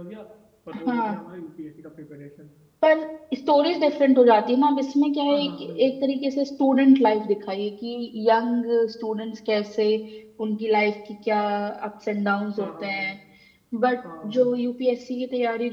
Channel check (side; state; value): both; identical; correlation 1.00